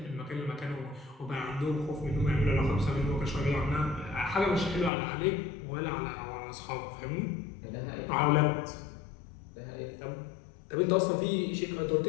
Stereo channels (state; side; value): drops out; right; at 4.9 s